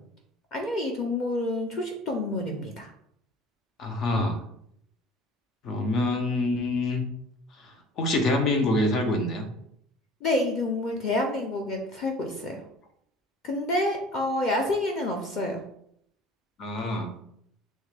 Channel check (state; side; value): normal; both; correlation 0.47